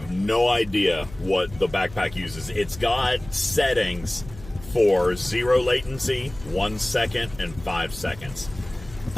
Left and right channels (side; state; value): left; noise; hum, 17 dB below the sound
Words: no idea what the backpack uses. It's got settings for 0 latency, 1 second, and 5 seconds.